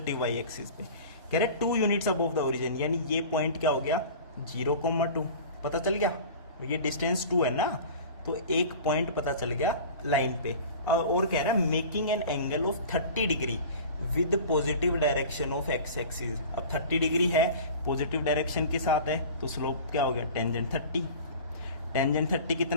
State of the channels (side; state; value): both; inverted; correlation -0.39